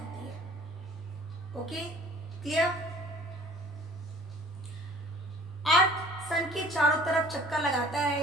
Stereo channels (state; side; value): normal; both; correlation 0.49